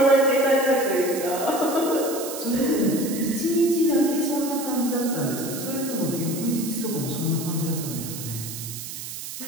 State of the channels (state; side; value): noise; right; hiss, 9 dB below the sound